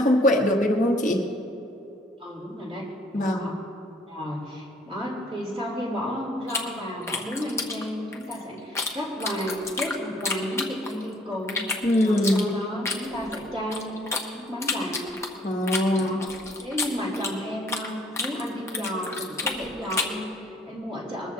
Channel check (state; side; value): normal; both; correlation 0.61